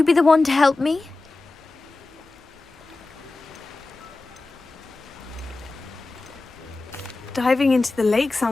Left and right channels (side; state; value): right; quieter; 3.3 dB